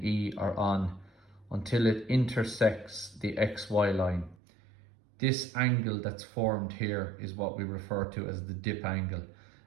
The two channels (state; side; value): drops out; left; at 4.4 s